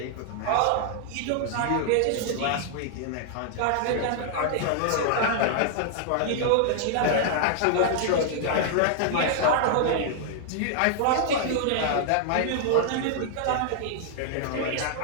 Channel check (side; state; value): both; different; correlation -0.01